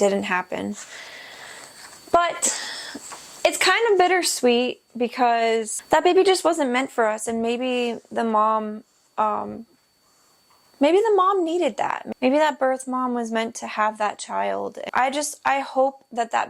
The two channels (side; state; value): both; identical; correlation 1.00